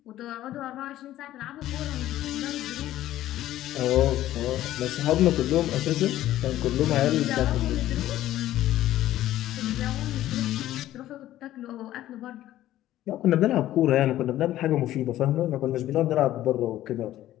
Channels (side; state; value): right; quieter; 13.8 dB